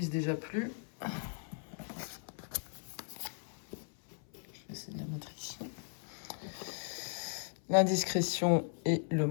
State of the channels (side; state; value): right; silent; 53 dB below the other